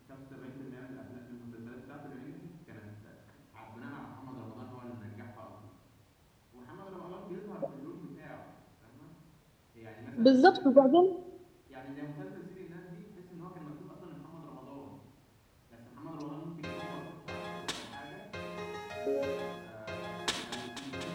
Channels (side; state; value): both; identical; correlation 1.00